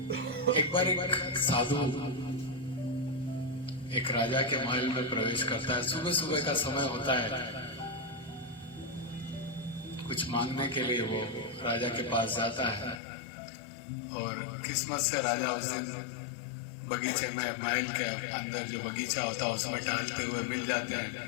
एक बार एक साधु एक राजा के महल में प्रवेश करता है। सुबह सुबह का समय होता है, कुछ मांगने के लिए वो राजा के पास जाता है और किस्मत से राजा उस दिन बगीचे में, महल के अंदर जो बगीचा होता है उसमें टहलते हुए मिल जाते हैं।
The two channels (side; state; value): right; drops out; at 13.0 s